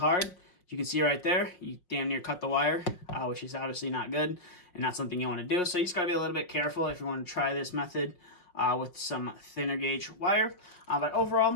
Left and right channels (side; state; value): right; late; 5.5 ms